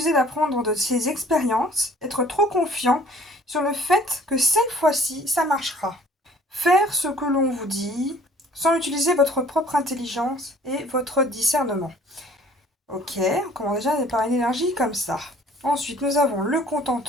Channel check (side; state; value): both; normal; correlation 0.54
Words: d'apprendre de ses expériences, être trop confiant sur le fait que cette fois-ci, ça marchera. Faire ce que l'on vous dit sans utiliser votre propre intelligence et votre discernement. Ok, on commence déjà par une énergie comme ça. Ensuite, nous avons le